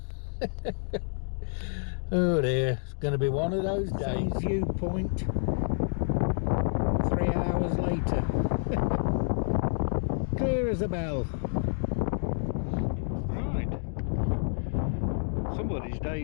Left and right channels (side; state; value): right; silent; digital silence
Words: Oh dear, it's going to be one of those days. Same viewpoint 3 hours later. Clear as a bell. Right, somebody's